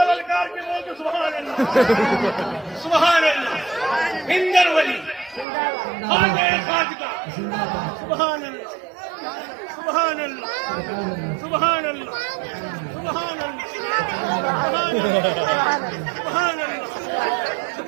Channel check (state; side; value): drops out; left; at 5.5 s